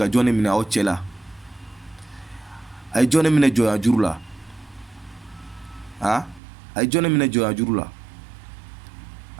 jɔn de minɛ aw cɛ la a ye jɔn de minɛ jɔnya juru la a ye jɔn de minɛ jɔnya juru la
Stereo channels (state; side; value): drops out; left; at 6.4 s